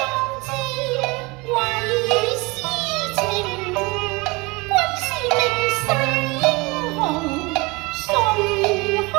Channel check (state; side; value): quieter; left; 25.3 dB